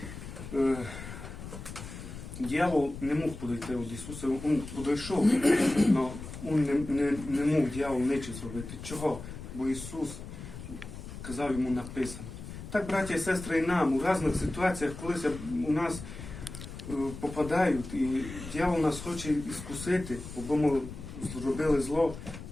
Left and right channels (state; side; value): noise; left; rumble, 11 dB below the sound